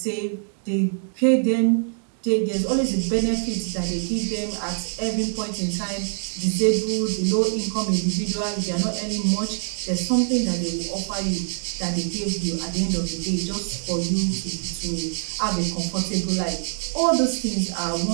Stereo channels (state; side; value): silent; left; digital silence